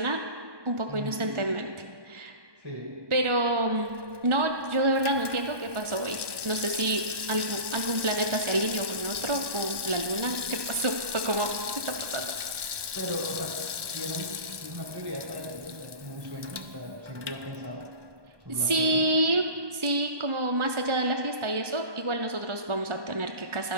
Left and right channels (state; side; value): late; left; 1.2 ms